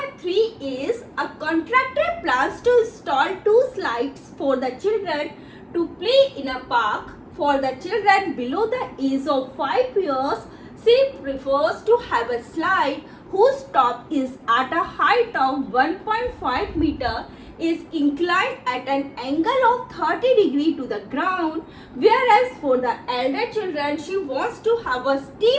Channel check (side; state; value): both; identical; correlation 1.00